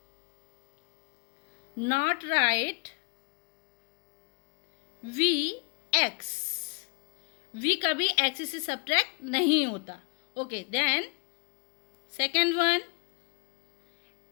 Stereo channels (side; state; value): right; quieter; 32.6 dB